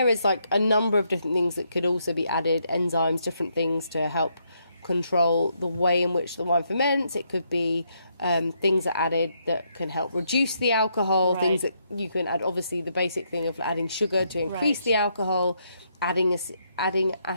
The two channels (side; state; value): both; inverted; correlation -0.76